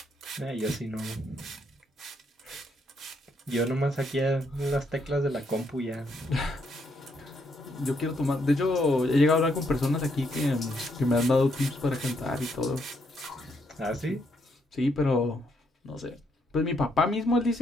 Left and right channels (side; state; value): both; normal; correlation 0.75